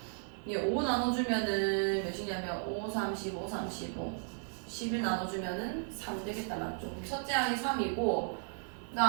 얘 5 나눠주면은 몇이냐면 5, 35, 35 11 나눠주면은 3 되겠다. 맞죠? 첫째 항이 3이고 그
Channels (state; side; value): silent; left; 55 dB below the other